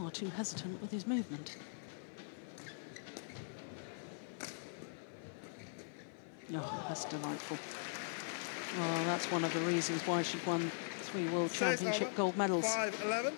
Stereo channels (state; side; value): silent; right; 51 dB below the other